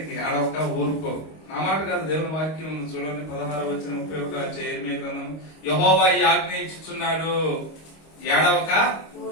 ఏడవక ఊరుకో. నా మాట కాదు, దేవుని వాక్యం ఉంది చూడండి. 16-31 యెర్మీయా గ్రంథం. యెహోవా ఈ ఆజ్ఞ ఇచ్చుచున్నాడు, ఏడవక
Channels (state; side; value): late; right; 25 ms